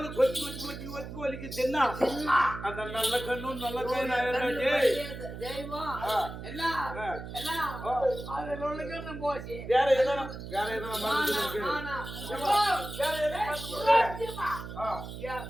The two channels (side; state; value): right; noise; hum, 10 dB below the sound